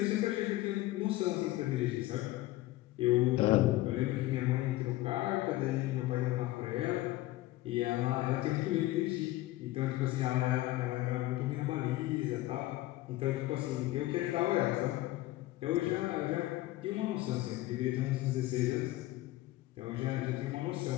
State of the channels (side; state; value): right; quieter; 17.0 dB